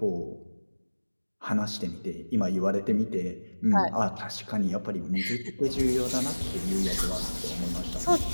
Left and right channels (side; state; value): both; inverted; correlation -1.00